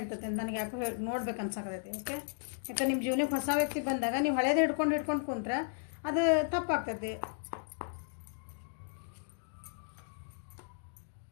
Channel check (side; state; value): right; silent; digital silence